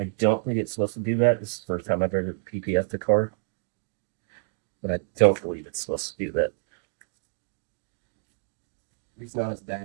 don't think it's supposed to do that. This is the first time I've ever PPF'd a car. But I don't believe it's supposed to do that. At least not as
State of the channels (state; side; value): silent; left; digital silence